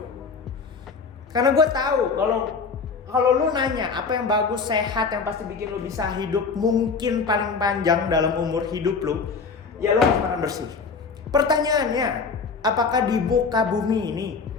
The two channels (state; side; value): quieter; right; 5.0 dB